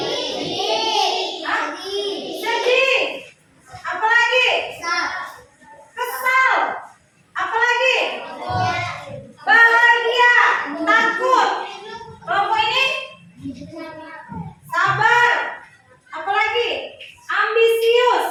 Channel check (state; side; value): identical; both; correlation 1.00